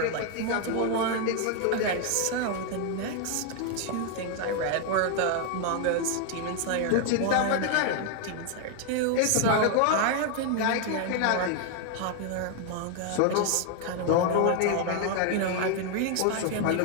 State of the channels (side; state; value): both; different; correlation 0.00